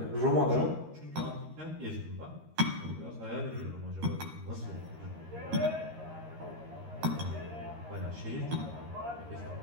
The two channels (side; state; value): left; late; 13 ms